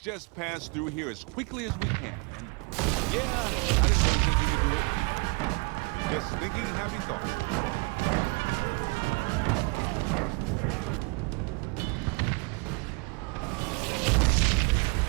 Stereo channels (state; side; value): quieter; left; 30.1 dB